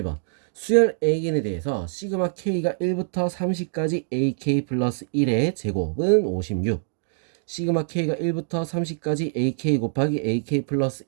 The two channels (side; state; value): left; silent; digital silence